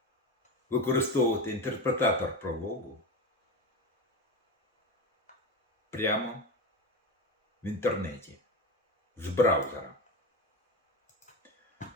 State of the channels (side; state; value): both; normal; correlation 0.21